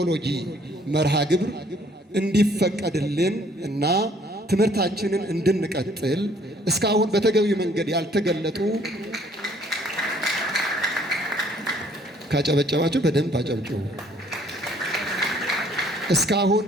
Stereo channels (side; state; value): both; normal; correlation 0.61